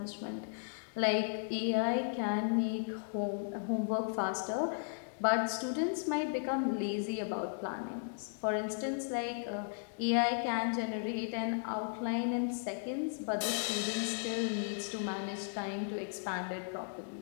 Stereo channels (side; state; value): right; silent; digital silence